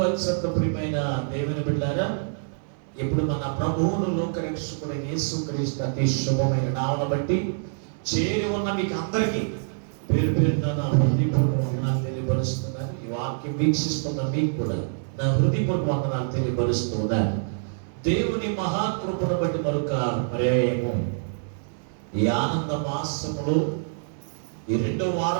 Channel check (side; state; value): left; silent; digital silence